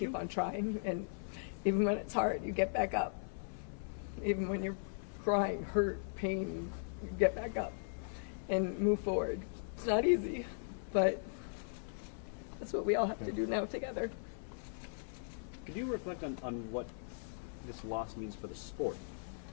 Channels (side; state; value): right; silent; 52 dB below the other